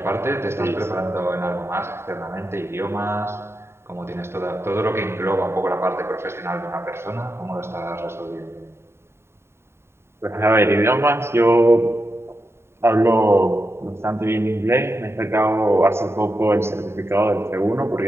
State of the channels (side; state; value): left; late; 0.12 ms